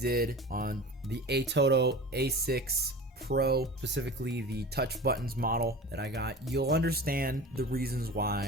on the ATOTO A6 Pro, specifically the touch buttons model that I got, you'll understand the reasons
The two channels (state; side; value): normal; both; correlation 0.35